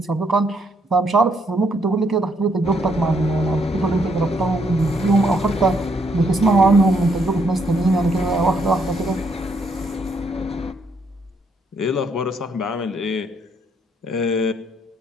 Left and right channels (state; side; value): normal; both; correlation 0.72